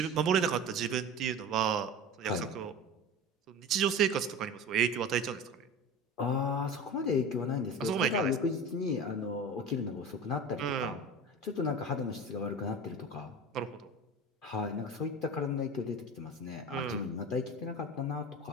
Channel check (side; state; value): both; normal; correlation 0.32